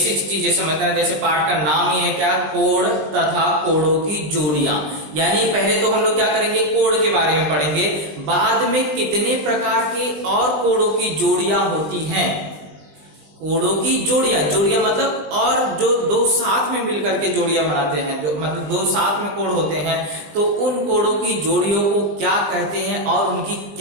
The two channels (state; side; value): late; left; 20 ms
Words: चीजें समझना है। जैसे पार्ट का नाम ही है क्या, कोड तथा कोडों की जोड़ियां। यानी पहले तो हम लोग क्या करेंगे, कोड के बारे में पढ़ेंगे, बाद में कितने प्रकार के और कोडों की जोड़ियां होती हैं। कोडों की जोड़ियां मतलब और जो दो साथ में मिलकर के जोड़ियां बनाते हैं, जो मतलब दो साथ में कोड होते हैं, तो उन कोडों की जोड़ियों को क्या कहते हैं और उनकी